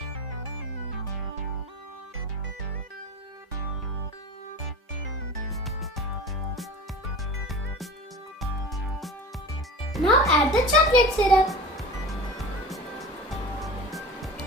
Now add the chocolate syrup.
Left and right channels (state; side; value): normal; both; correlation 0.34